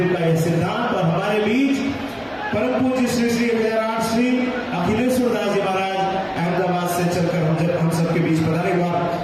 का यह सिद्धांत। और हमारे बीच परम पूज्य श्री श्री विजयराज श्री अखिलेश्वर दास जी महाराज अहमदाबाद से चलकर हम सबके बीच पधारे। हुआ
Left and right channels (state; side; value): identical; both; correlation 1.00